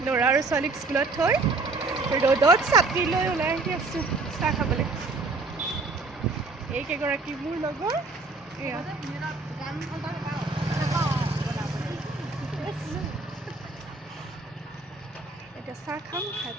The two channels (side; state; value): left; quieter; 3.6 dB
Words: ল'ৰা আৰু ছোৱালীক স্কুলত থৈ ৰ'দত ছাতি লৈ ওলাই আহি আছোঁ চাহ খাবলৈ। এইকেইগৰাকী মোৰ লগৰ। এয়া এতিয়া চাহ খাম, খাই